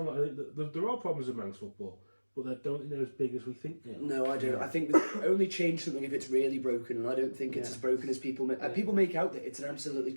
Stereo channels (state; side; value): inverted; both; correlation -1.00